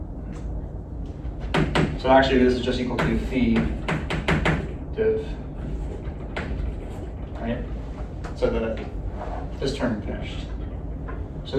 So actually this is just equal to phi div, right? So that this term finished. So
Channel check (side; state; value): both; identical; correlation 1.00